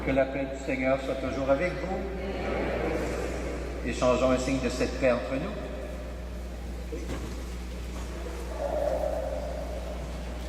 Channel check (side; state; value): both; identical; correlation 1.00